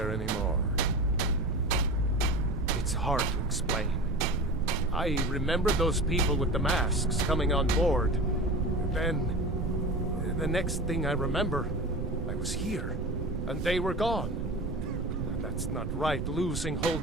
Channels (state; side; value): noise; right; rumble, 3 dB below the sound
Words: anymore. It's hard to explain. I remember those people with the masks coming on board. Then, the next thing I remember, I was here, and they were gone. And that's not right, losing whole